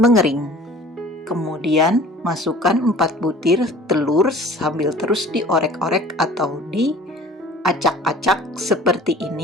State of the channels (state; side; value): normal; both; correlation 0.47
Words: Kemudian masukkan 4 butir telur sambil terus diorek-orek atau diacak-acak seperti